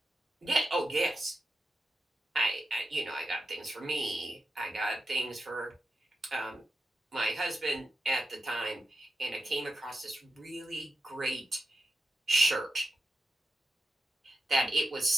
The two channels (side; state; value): both; normal; correlation 0.88